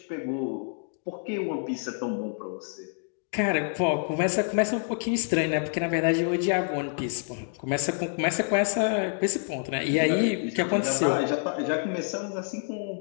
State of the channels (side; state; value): right; silent; 60 dB below the other